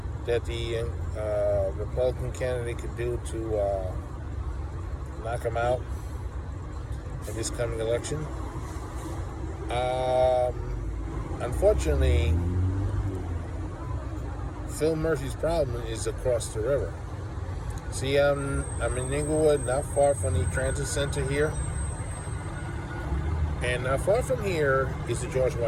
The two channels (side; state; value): both; identical; correlation 1.00